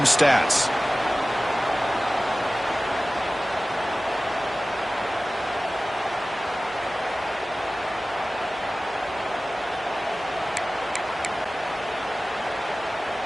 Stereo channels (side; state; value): both; normal; correlation 0.97